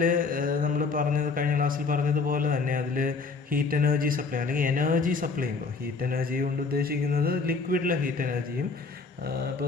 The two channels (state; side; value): quieter; right; 4.5 dB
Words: നമ്മൾ കഴിഞ്ഞ ക്ലാസ്സിൽ പറഞ്ഞതുപോലെ തന്നെ അതിൽ ഹീറ്റ് എനർജി സപ്ലൈ അല്ലെങ്കിൽ എനർജി സപ്ലൈ ചെയ്യുമ്പോൾ ഹീറ്റ് എനർജി കൊണ്ട് ഉദ്ദേശിക്കുന്നത് ലിക്വിഡിലെ ഹീറ്റ് എനർജിയും,